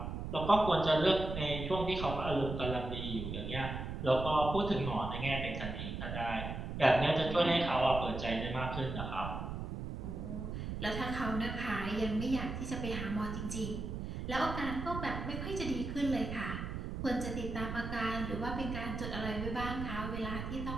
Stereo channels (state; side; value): noise; right; rumble, 5 dB below the sound